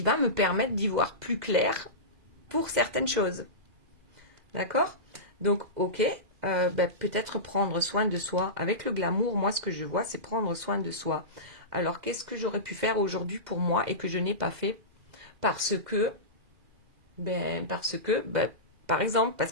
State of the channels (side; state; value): left; late; 2.0 ms